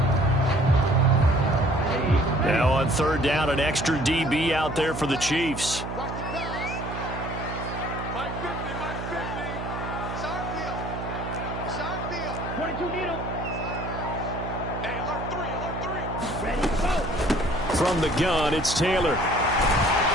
Now on 3rd down, an extra DB out there for the Chiefs. Watch the pass. Mike 50, Mike 50. It's our field. It's our field. 22 needle. Hey, alert 3, alert 3. Ready, go. From the gun, it's Taylor.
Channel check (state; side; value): noise; right; hum, 7 dB below the sound